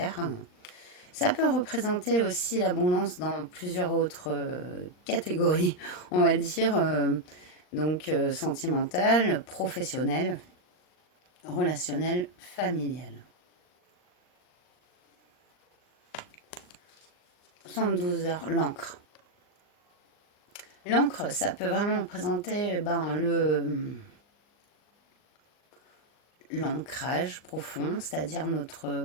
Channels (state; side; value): late; right; 39 ms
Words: Ça peut représenter aussi l'abondance dans plusieurs autres catégories, on va dire, donc sentimentale, professionnelle, relationnelle, familiale. 72 heures, l'encre. L'encre, ça peut vraiment représenter l'ancrage profond, c'est-à-dire